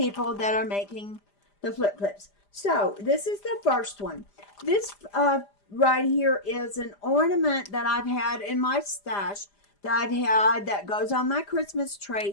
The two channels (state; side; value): late; right; 5.0 ms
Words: that are making the flip clips. So this is the first one. This right here is an ornament that I've had in my stash that goes on my Christmas